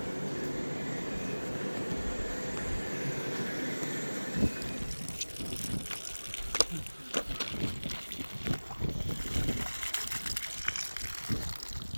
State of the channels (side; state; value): both; inverted; correlation -1.00